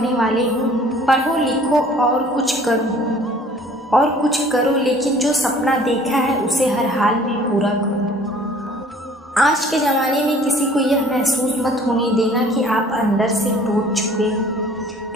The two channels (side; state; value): both; normal; correlation 0.53